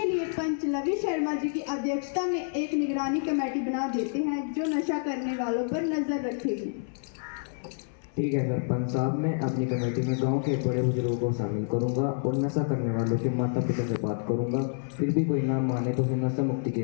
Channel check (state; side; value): silent; right; 58 dB below the other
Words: लिए पंच लवी शर्मा जी की अध्यक्षता में एक निगरानी कमेटी बना देते हैं जो नशा करने वालों पर नजर रखेगी। ठीक है सरपंच साहब, मैं अपनी कमेटी में गांव के बड़े बुजुर्गों को शामिल करूंगा और नशा करने वालों के माता पिता से बात करूंगा। फिर भी कोई ना माने तो फिर नशा मुक्ति